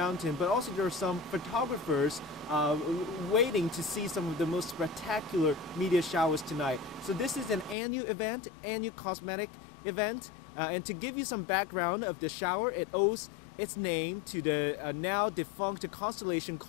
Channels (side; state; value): right; drops out; at 7.8 s